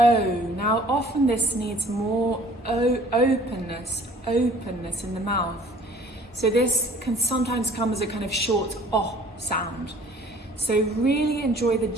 Now often this needs more openness in the mouth. So this can sometimes come as a kind of short O sound. So really enjoy the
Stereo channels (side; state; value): both; normal; correlation 0.53